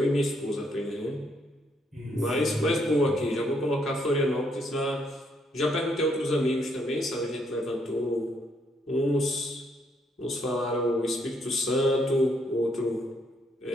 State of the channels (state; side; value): normal; both; correlation 0.73